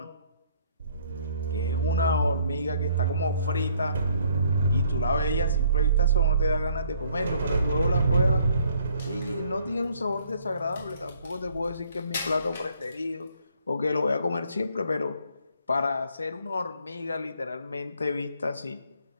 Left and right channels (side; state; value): both; inverted; correlation -0.63